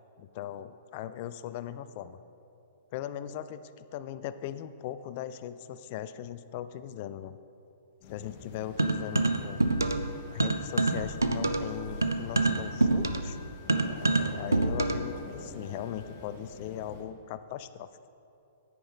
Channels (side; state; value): both; inverted; correlation -0.74